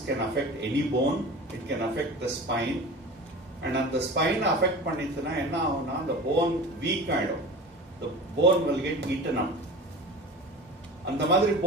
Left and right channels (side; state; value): both; normal; correlation 0.34